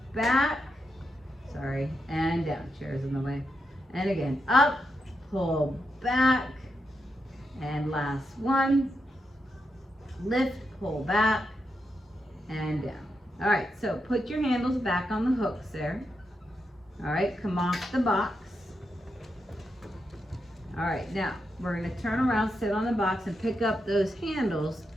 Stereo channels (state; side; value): normal; both; correlation 0.85